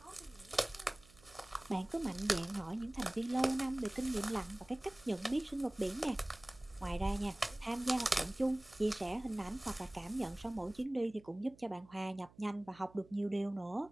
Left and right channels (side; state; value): right; noise; hum, 25 dB below the sound